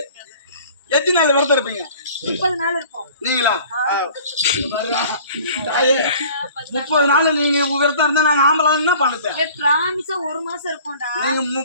எத்தனை நாள் விரதம் இருப்பீங்க? 30 நாள் இருப்போம். நீங்களா? 30 நாள் நீங்க விரதம் இருந்தா நாங்க ஆம்பளை என்ன பண்ணுது? பிராமிஸா 1 மாசம் இருப்போம்டா. நீங்க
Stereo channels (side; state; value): both; inverted; correlation -0.48